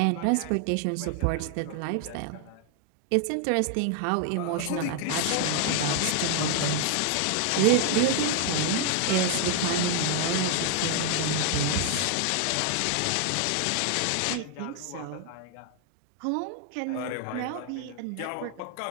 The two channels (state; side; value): different; both; correlation 0.00